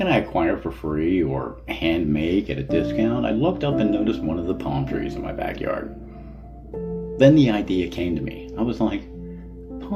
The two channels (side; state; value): both; identical; correlation 1.00